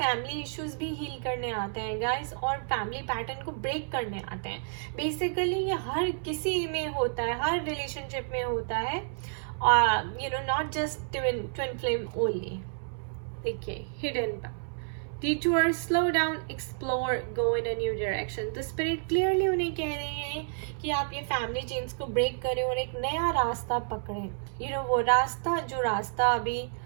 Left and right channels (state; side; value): silent; left; 58 dB below the other